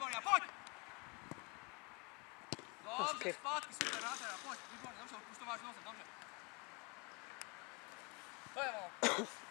a pojď! Dobře, zpátky, super, nádhera, pojď, výborně, dobře, už to máš nosem, dobře. To je ono.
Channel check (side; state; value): right; quieter; 29.8 dB